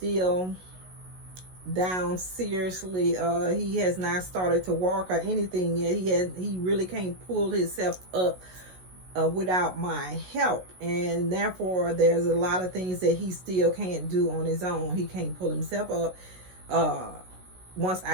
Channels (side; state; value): left; late; 16 ms